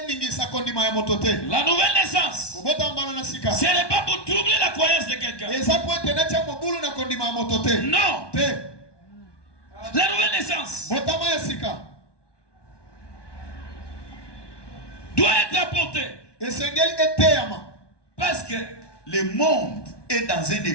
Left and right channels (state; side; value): late; right; 1.2 ms